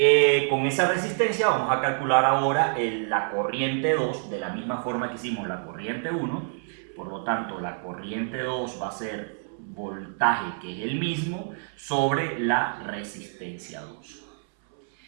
Con esa resistencia vamos a calcular ahora la corriente 2 de la misma forma que hicimos la corriente 1. Por lo tanto, la corriente 2 va a ser voltaje, que es el mismo, sobre la resistencia 2.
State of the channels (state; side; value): silent; left; 60 dB below the other